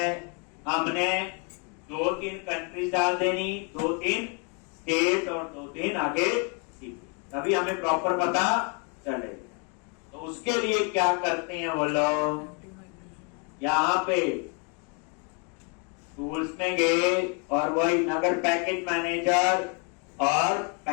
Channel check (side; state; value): right; quieter; 36.2 dB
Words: हमने 2-3 कंट्रीज डाल देनी, 2-3 स्टेट और 2-3 आगे सिटी, तभी हमें प्रॉपर पता चलेगा। तो उसके लिए क्या करते हैं वो लोग, यहाँ पे टूल्स में गए और वही नगर पैकेज मैनेजर और